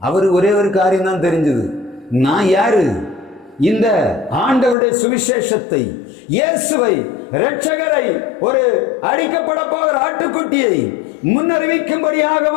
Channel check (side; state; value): right; drops out; at 4.8 s